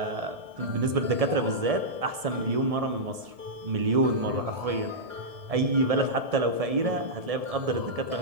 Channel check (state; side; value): late; left; 1.7 ms